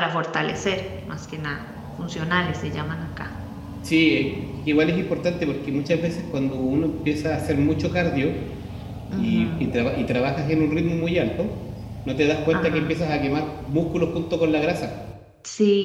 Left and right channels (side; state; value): both; identical; correlation 1.00